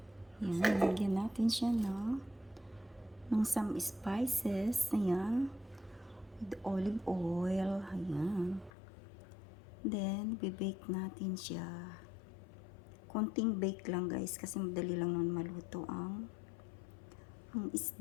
Yan, lagyan natin siya ng some spices, ayan, with olive oil, ayan. Then, bibake natin siya. Konting bake lang guys, kasi madali lang nun maluto ang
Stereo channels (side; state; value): right; drops out; at 8.7 s